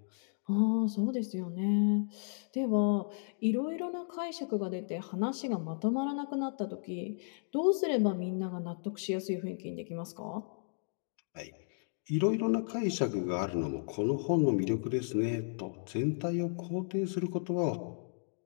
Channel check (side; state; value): right; silent; digital silence